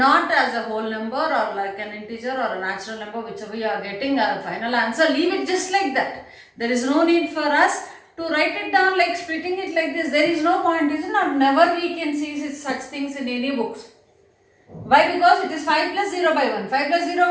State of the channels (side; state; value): both; identical; correlation 1.00